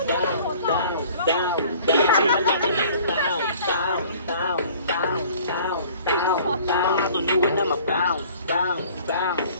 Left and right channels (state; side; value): inverted; both; correlation -0.52